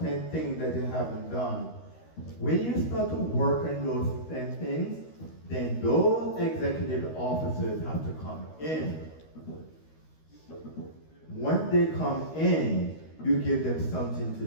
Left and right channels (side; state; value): right; late; 13 ms